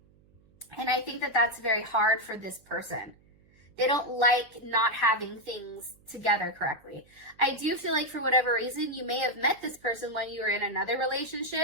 And I think that that's very hard for this person. They don't like not having things together correctly. I do feel like, for whatever reason, you may have met this person when you were in another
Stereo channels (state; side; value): noise; right; hum, 30 dB below the sound